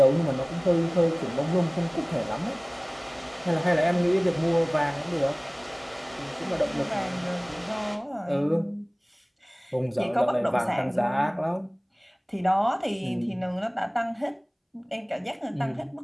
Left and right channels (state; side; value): identical; both; correlation 1.00